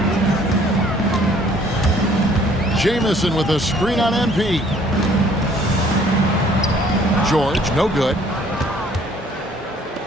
Jamison with a screen on MP. George, no good.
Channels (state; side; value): normal; both; correlation 0.58